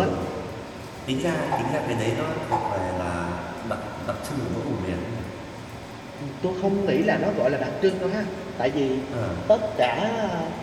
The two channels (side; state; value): both; identical; correlation 1.00